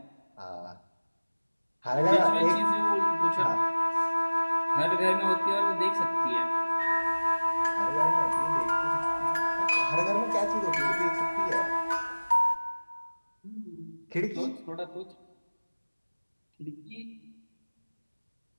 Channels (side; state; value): both; inverted; correlation -1.00